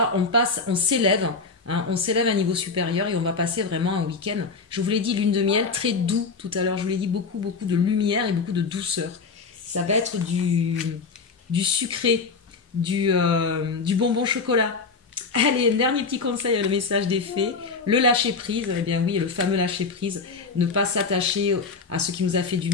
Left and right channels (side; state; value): right; quieter; 4.5 dB